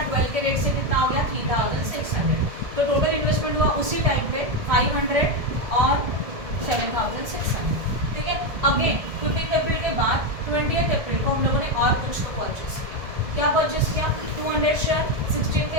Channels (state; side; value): late; left; 1.7 ms